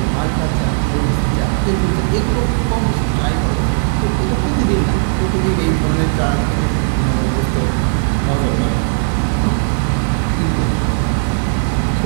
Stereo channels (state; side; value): silent; left; digital silence